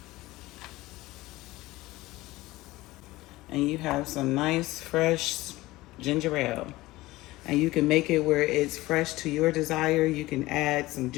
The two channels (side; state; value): right; quieter; 18.7 dB